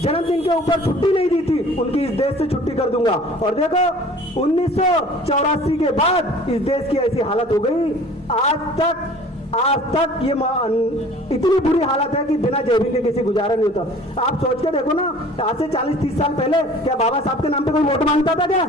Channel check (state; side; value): normal; both; correlation 0.48